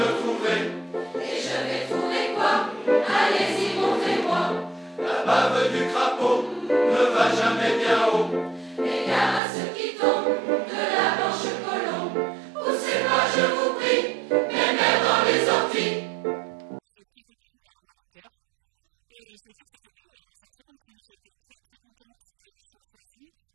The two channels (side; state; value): left; drops out; at 9.4 s